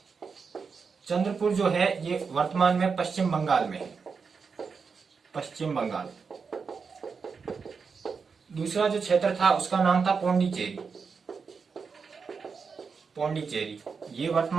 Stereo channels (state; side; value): quieter; left; 5.4 dB